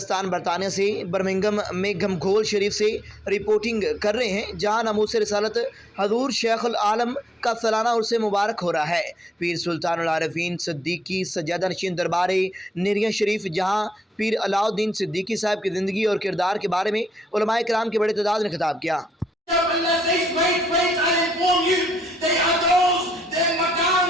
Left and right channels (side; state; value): both; normal; correlation 0.78